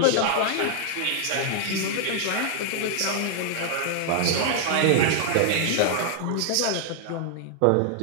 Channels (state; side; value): different; both; correlation 0.00